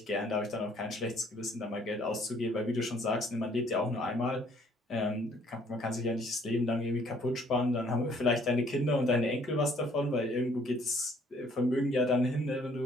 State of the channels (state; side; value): normal; both; correlation 0.61